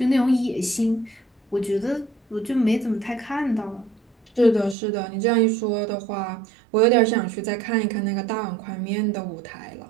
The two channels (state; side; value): drops out; left; at 4.8 s